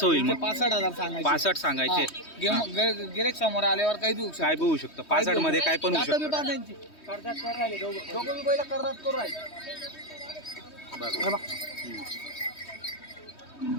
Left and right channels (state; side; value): late; right; 3.2 ms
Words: होईल मग? 65,000 सांगायचे. 65 सांगायचे. गिरेक समोर आल्यावर काही देऊ शकतो. काय बी होऊ शकतं 65 मध्ये, काय पण होऊ शकतं. दोघं बी बैल करतात करू राहिले. बरं